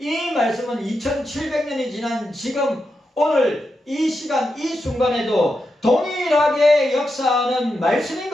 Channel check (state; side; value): normal; both; correlation 0.87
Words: 말씀은 2700년이 지난 지금 오늘 이 시간 이 순간에도 동일하게 역사하는 말씀인